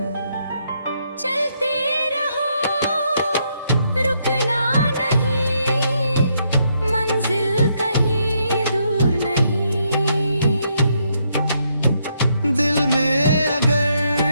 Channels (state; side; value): inverted; both; correlation -0.75